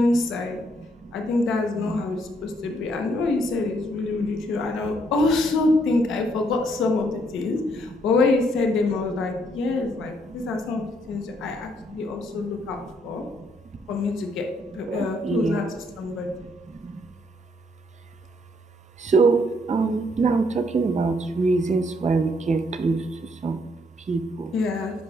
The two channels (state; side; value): normal; both; correlation 0.70